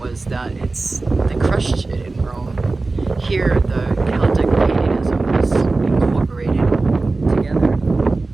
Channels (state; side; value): quieter; left; 3.5 dB